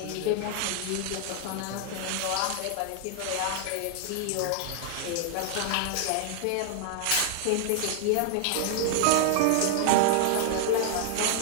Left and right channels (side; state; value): both; different; correlation 0.00